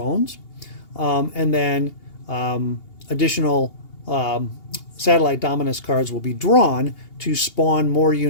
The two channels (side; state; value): right; late; 2.8 ms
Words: And then additional satellite Dominus cards will be drawn to spawn more